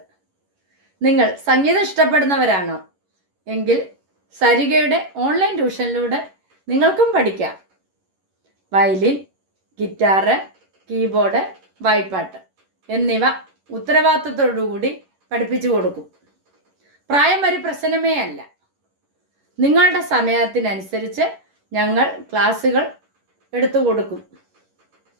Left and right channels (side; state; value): left; late; 11 ms